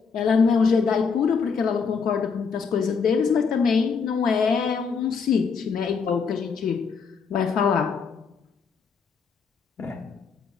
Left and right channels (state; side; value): quieter; right; 5.6 dB